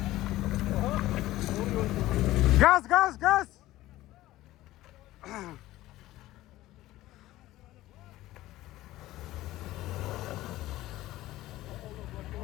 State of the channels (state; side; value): quieter; right; 16.1 dB